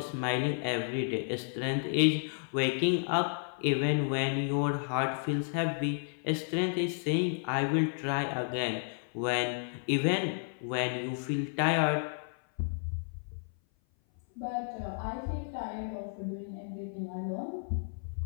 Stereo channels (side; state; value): right; silent; 56 dB below the other